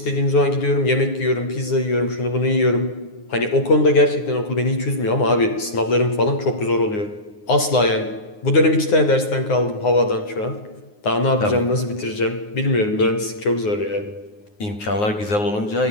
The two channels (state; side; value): late; right; 9.6 ms